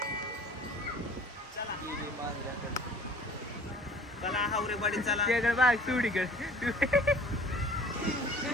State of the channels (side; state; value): both; normal; correlation 0.49